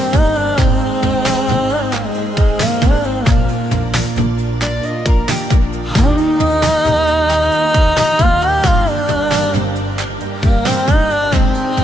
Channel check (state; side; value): normal; both; correlation 0.81